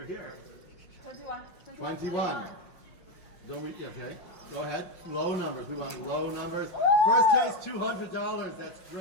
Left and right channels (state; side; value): late; right; 5.5 ms